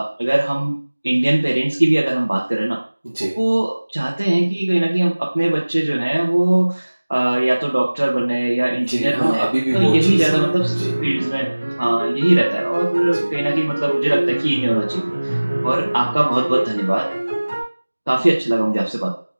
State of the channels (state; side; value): inverted; both; correlation -1.00